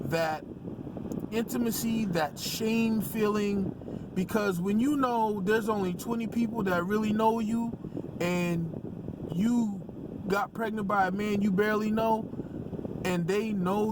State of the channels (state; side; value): identical; both; correlation 1.00